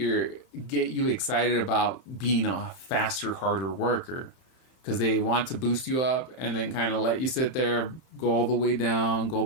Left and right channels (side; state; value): right; late; 31 ms